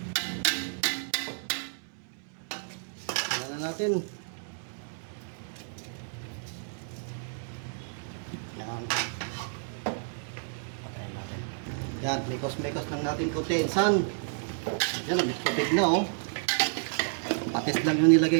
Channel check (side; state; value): left; silent; 57 dB below the other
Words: Natin. Yan. Patayin natin. Yan, mikos-mikos lang natin konti. Insan. Yan, nagtubig na, oh. Patis lang yung